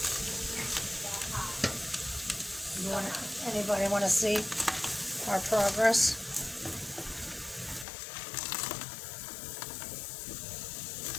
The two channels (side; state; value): right; drops out; at 7.9 s